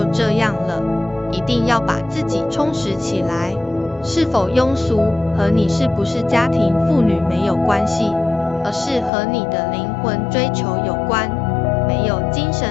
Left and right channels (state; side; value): drops out; right; at 9.1 s